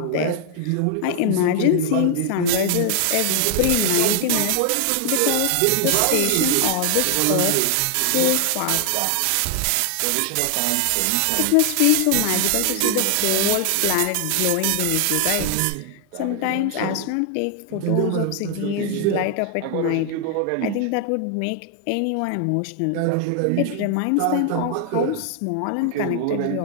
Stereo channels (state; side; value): different; both; correlation 0.00